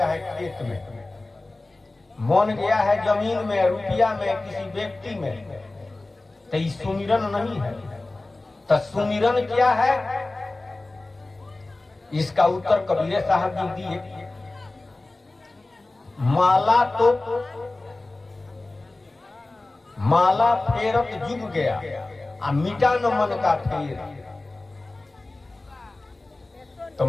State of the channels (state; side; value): quieter; right; 3.0 dB